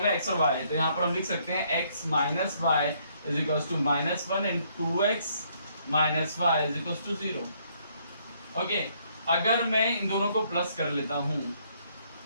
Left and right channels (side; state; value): both; inverted; correlation -0.68